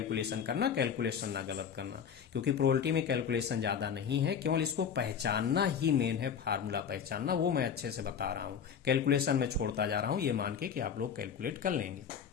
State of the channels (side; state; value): right; quieter; 7.5 dB